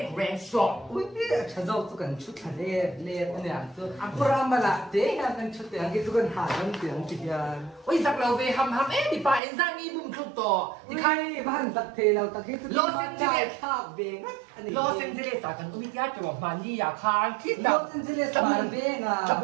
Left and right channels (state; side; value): drops out; left; at 9.4 s